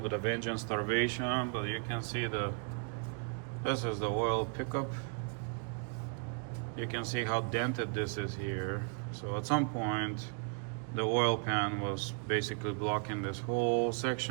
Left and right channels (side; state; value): left; quieter; 39.1 dB